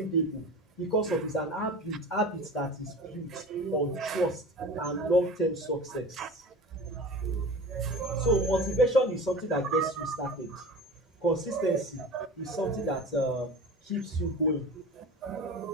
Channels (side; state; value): both; normal; correlation 0.35